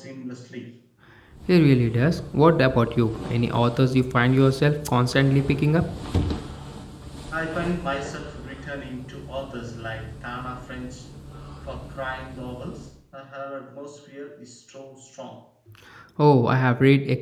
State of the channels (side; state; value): both; identical; correlation 1.00